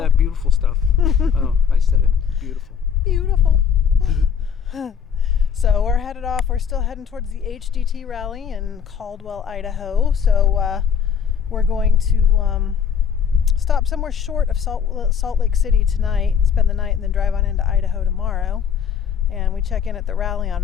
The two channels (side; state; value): right; quieter; 7.4 dB